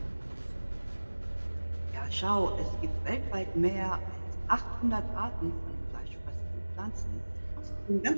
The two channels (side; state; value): both; inverted; correlation -1.00